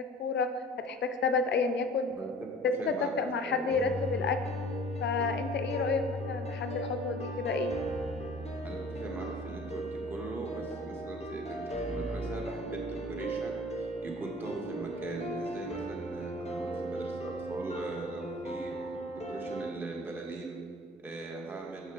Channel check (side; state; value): both; normal; correlation 0.46